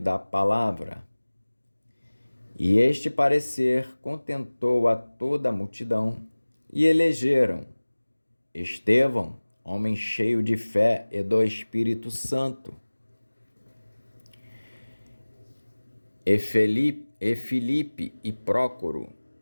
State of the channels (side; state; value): both; inverted; correlation -1.00